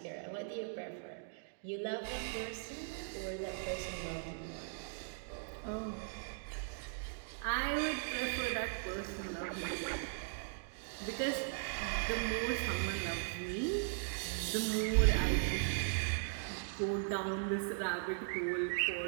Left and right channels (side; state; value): left; silent; digital silence